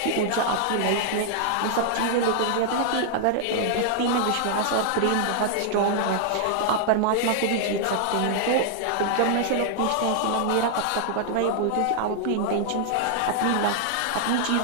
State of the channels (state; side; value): different; both; correlation -0.01